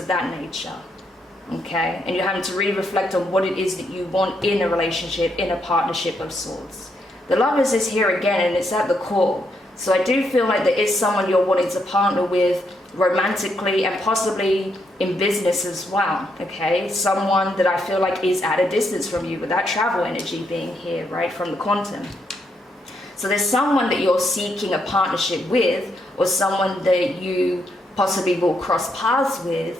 that nature, okay? And you're having to really reflect on what it is that you want in a relationship, in a partnership of sorts. The Lovers is here again, and it's at the core. So I do feel like there is someone you're wanting to partner with romantically and possibly in business as well, okay? Someone that I feel like is at a distance from you, with that travel energy being here, right, from the quantum. So there's someone that you're seeking a partnership with, or someone that you possibly will cross paths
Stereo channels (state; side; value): normal; both; correlation 0.77